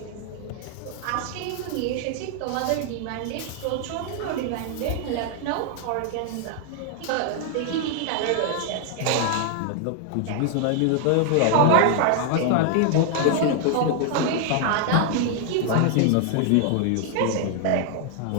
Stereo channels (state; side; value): different; both; correlation 0.00